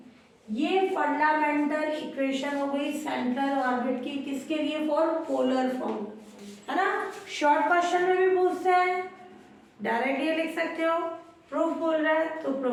ये फंडामेंटल इक्वेशन हो गई सेंट्रल ऑर्बिट की, किसके लिए, फॉर पोलर फॉर्म, है ना। शॉर्ट क्वेश्चन में भी पूछते हैं, डायरेक्ट ये लिख सकते हो, प्रूफ बोल रहा है तो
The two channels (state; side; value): identical; both; correlation 1.00